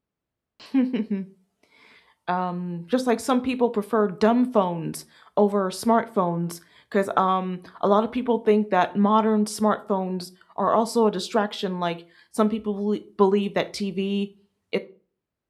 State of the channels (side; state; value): both; identical; correlation 1.00